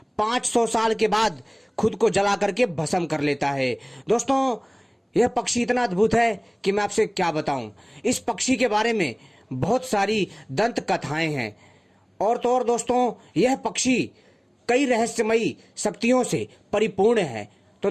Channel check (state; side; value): identical; both; correlation 1.00